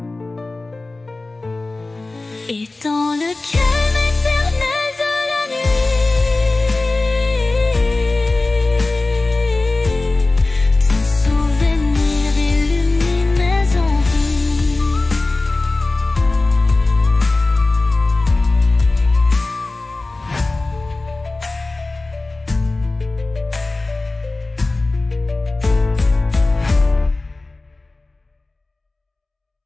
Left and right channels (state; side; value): quieter; right; 3.2 dB